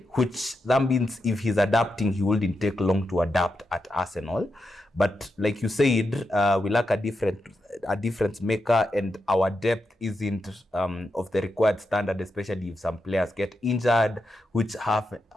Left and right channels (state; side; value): normal; both; correlation 0.86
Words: which that means if he's adapting, he wouldn't take long to adapt at Arsenal. But like you said, we lack a difference maker, and our depth isn't of the required standard, especially if some players get injured, which